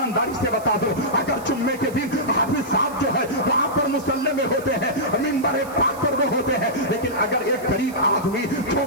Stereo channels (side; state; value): right; noise; hiss, 20 dB below the sound